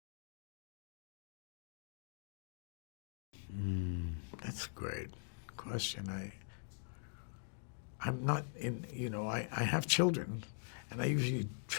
That's a great question. I'm not in, I have children, and I usually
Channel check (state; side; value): silent; right; digital silence